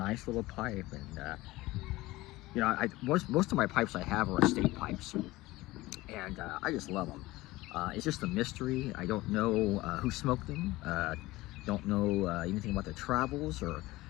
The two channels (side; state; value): right; quieter; 19.0 dB